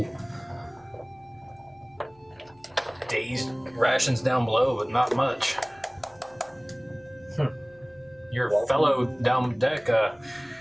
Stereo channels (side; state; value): left; noise; hum, 30 dB below the sound